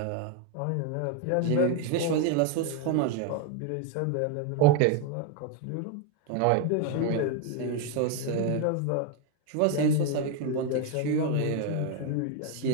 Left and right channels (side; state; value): both; different; correlation 0.01